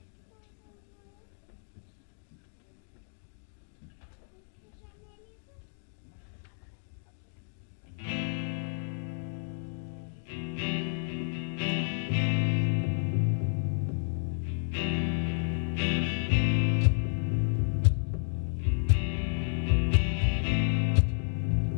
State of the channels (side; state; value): right; silent; digital silence